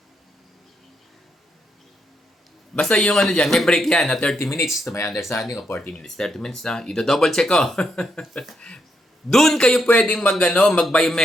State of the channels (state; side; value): normal; both; correlation 0.79